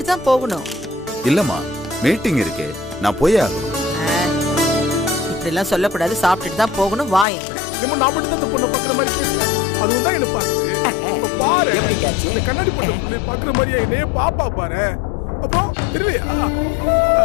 தான் போகணும். இல்லம்மா, மீட்டிங் இருக்கு, நான் போய் ஆகணும். இப்படி எல்லாம் சொல்லக்கூடாது. சாப்பிட்டுட்டு தான் போகணும். வா என் கூட. நம்ம நான் மட்டும் தான் பொண்ணை பாக்குற மாதிரி பேசுறேன். அதுவும் தான் என்ன பாக்குது. பாரு எப்படி கேட்சி? இந்த கண்ணாடி போட்ட புள்ளை பாக்குற மாதிரியா என்னையே பாப்பா பாரு. அப்புறம் தெரியலையா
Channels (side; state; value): right; drops out; at 7.2 s